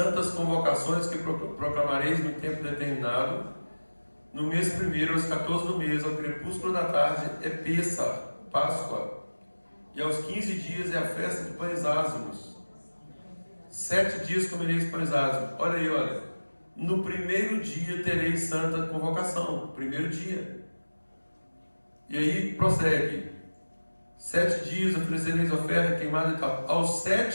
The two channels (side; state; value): both; inverted; correlation -1.00